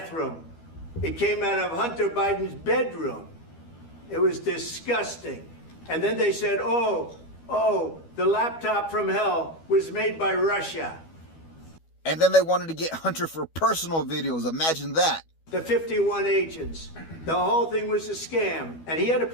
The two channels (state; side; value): late; right; 12 ms